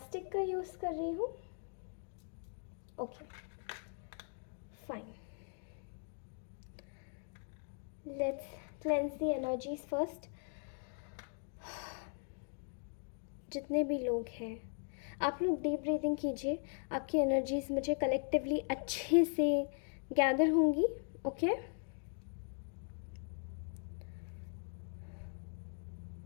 का यूज़ कर रही हूँ। Okay, fine. Let's cleanse the energies first. जितने भी लोग हैं, आप लोग डीप ब्रीदिंग कीजिए। आपकी एनर्जीज मुझे कलेक्टिवली अच्छे से गैदर होंगी। Okay,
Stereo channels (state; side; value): silent; right; 52 dB below the other